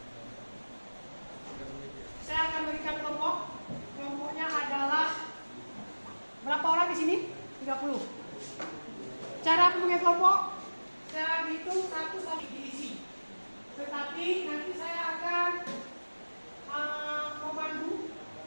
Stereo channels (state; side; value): inverted; both; correlation -1.00